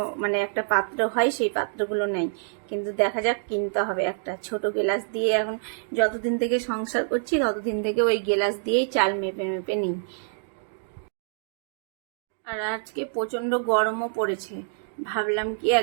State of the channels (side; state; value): left; silent; digital silence